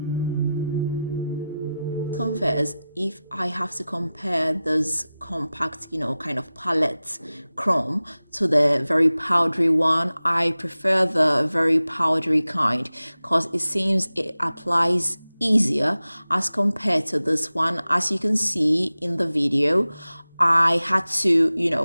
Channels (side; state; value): both; inverted; correlation -0.95